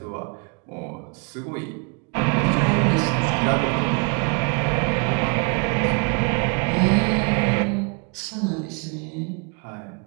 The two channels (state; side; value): quieter; left; 34.2 dB